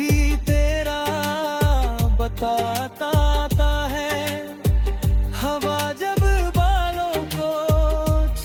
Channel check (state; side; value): identical; both; correlation 1.00